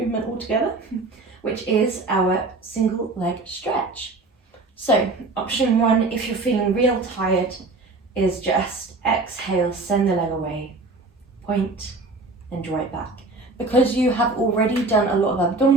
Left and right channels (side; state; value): left; quieter; 3.3 dB